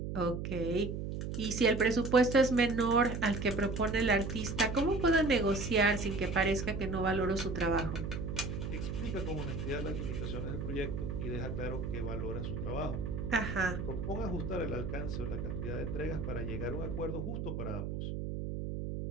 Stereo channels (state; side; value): noise; right; hum, 4 dB below the sound